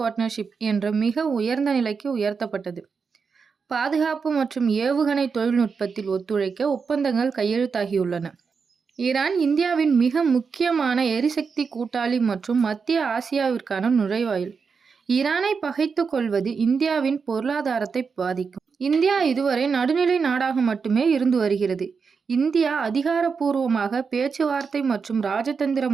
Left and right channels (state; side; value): quieter; left; 5.5 dB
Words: என்ற மிக உயர்ந்த நிலைக்கு உயர்த்தப்பட்டது. பாதுகாப்பு மற்றும் ஏவுகணை தொழில்நுட்பத்தில் ஒத்துழைக்க ஒப்பந்தங்கள் கையெழுத்தாகியுள்ளன. ஈரான் இந்தியாவின் மிக முக்கியமான எரிசக்தி கூட்டாளி மற்றும் மத்திய ஆசியாவிற்கான நுழைவாயில். ஈரானை பகைத்துக் கொள்வது இந்தியாவின் பொருளாதாரத்தை பாதிக்கும். இந்தியா இதுவரை நடுநிலை நாடாக மட்டுமே இருந்து வருகிறது. இந்தியா அதிகாரப்பூர்வமாக பேச்சுவார்த்தை மற்றும்